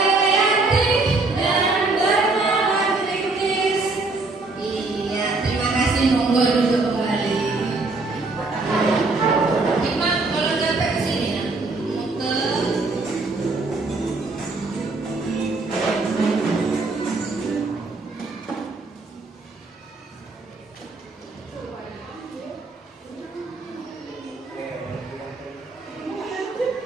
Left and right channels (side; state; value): left; quieter; 3.5 dB